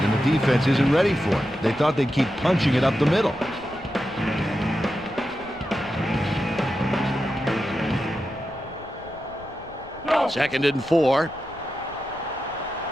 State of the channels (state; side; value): noise; left; rumble, 21 dB below the sound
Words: and the defense isn't ready for it. They thought they'd keep punching it up the middle. Second and 4.